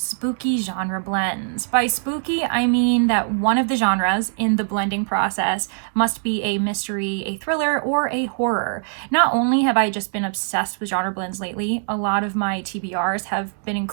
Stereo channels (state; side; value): silent; left; digital silence